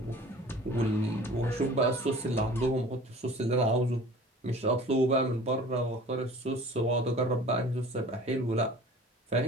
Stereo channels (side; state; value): both; normal; correlation 0.44